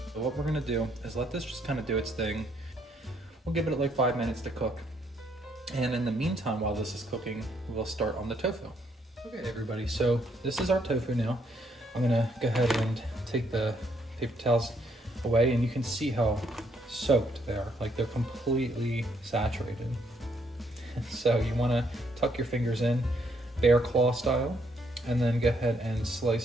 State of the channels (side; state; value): both; normal; correlation 0.71